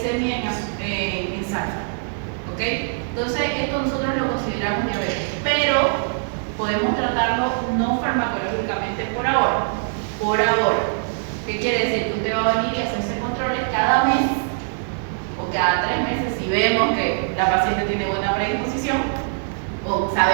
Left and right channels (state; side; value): silent; left; digital silence